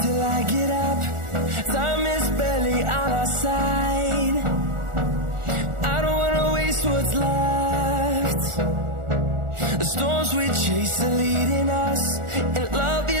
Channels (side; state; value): left; late; 1.4 ms